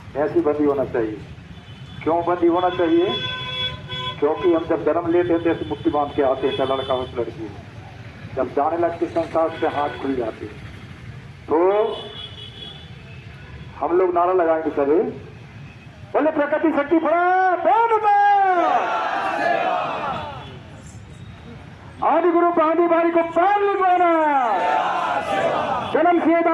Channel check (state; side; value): identical; both; correlation 1.00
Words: ऐसी बंधी होना चाहिए। क्यों बंधी होना चाहिए? क्योंकि हम जब जन्म लेते हैं तो ऐसी मुट्ठी बांध के आते हैं, चाहे लड़का हो तो लड़की हो। जब जाने लगते संसार से हाथ खुल जाते, तो हम लोग नारा लगाएंगे सभी, बोले प्रकृति शक्ति आदि गुरु पादी बारी को पान लिखवाना, जन्म से